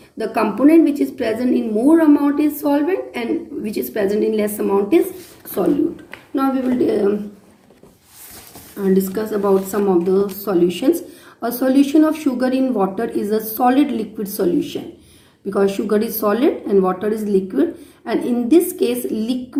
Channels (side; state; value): both; identical; correlation 1.00